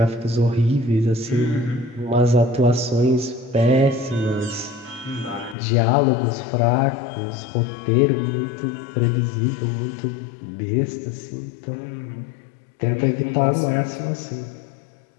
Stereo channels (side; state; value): right; drops out; at 5.6 s